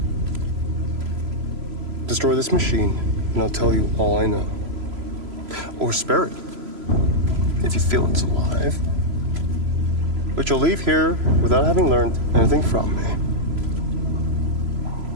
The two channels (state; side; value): late; left; 3.0 ms